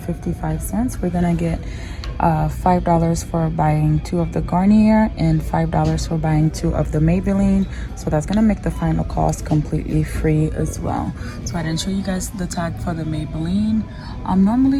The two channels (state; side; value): identical; both; correlation 1.00